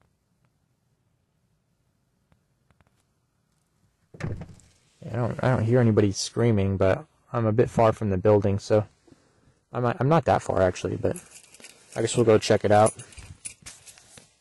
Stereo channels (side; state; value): both; identical; correlation 1.00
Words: I don't hear anybody screaming, but I'm a bit far from the building, so I'm not that far actually, but I guess we'll go check it out.